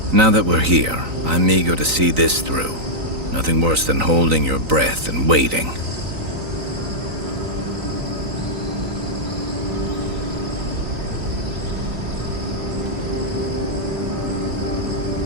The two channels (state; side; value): late; left; 3.9 ms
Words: Now that we're here, I'm eager to see this through. Nothing worse than holding your breath and waiting.